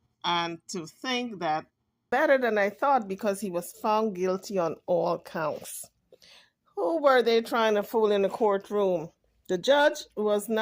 And to think that better than I thought because he was found guilty on all counts. Who were they trying to fool in the courtroom? The judge was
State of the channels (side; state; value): both; identical; correlation 1.00